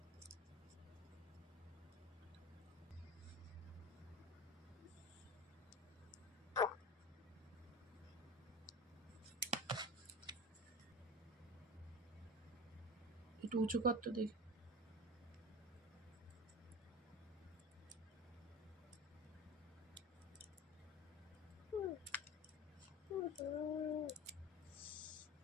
একটু উঁচু কর তো দেখি।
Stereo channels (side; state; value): both; normal; correlation 0.32